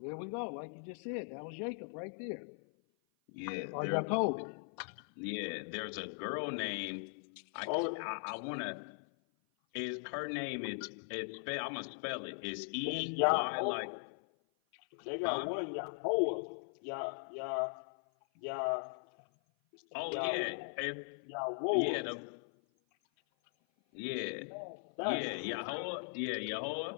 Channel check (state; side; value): silent; right; 52 dB below the other